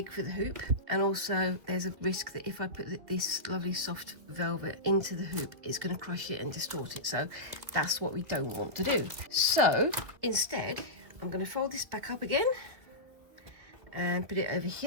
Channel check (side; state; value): left; late; 2.4 ms